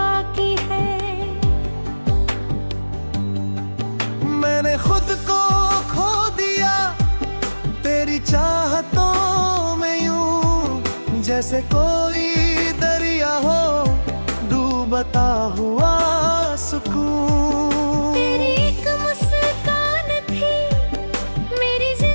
है। मैंने खुद को खो दिया तेरी चाहतों में यूं, जैसे कोई दरिया हो डूबता हुआ सुकून। तेरी एक मुस्कान थी मेरी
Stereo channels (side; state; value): both; inverted; correlation -1.00